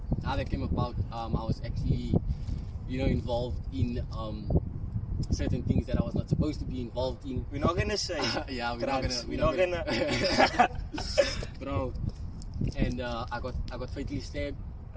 how that came about, I was actually, you know, involved in certain things that I was not supposed to be involved in. We're not gonna say yeah, we're drugs. not gonna bro. And I got fatally stabbed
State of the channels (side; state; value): both; identical; correlation 1.00